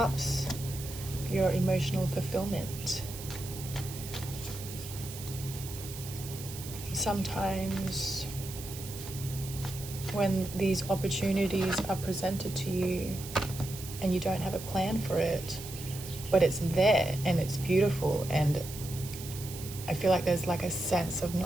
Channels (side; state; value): right; noise; hiss, 12 dB below the sound